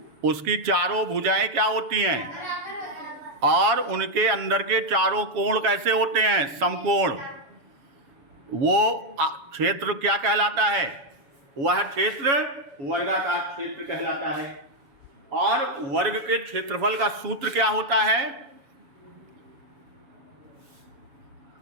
उसकी चारों भुजाएं क्या होती हैं और उनके अंदर के चारों कोण कैसे होते हैं? समकोण। वो क्षेत्र क्या कहलाता है? वह क्षेत्र वर्गाकार क्षेत्र कहलाता है। और वर्ग के क्षेत्रफल का सूत्र क्या होता है?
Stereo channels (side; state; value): left; late; 7.2 ms